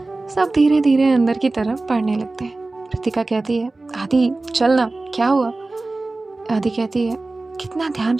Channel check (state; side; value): quieter; left; 3.2 dB